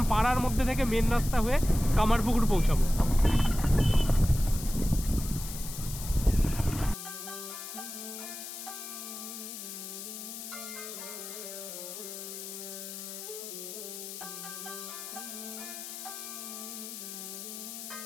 পাড়ার মধ্যে থেকে মেন রাস্তা হয়ে কামারপুকুর পৌঁছাবো।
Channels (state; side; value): noise; left; hiss, 9 dB below the sound